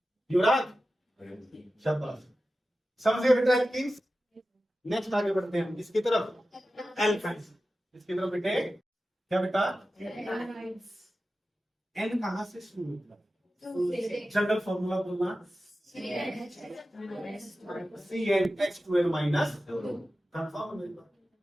युवराज शाबाश समझे बेटा किंग्स नेक्स्ट आगे बढ़ते हैं इसकी तरफ एल्काइंस इसकी तरफ बेटे क्या बेटा एन कहां से शुरू होता है जनरल फॉर्मूला बोलना CnH2n माइनस कंफर्म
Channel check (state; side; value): normal; both; correlation 0.94